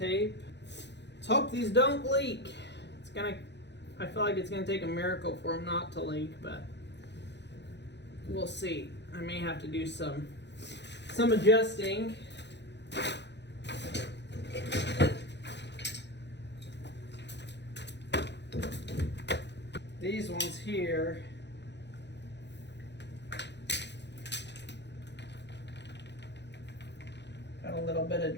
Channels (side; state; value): right; late; 0.50 ms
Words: Let's hope these don't leak. I feel like it's gonna take a miracle for them not to leak, but we'll see. I may have to do some adjusting. These ones here, got a little bit of